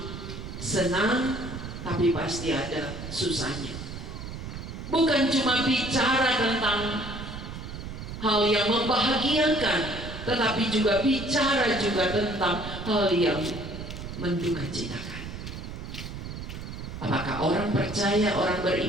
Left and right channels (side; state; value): right; noise; rumble, 9 dB below the sound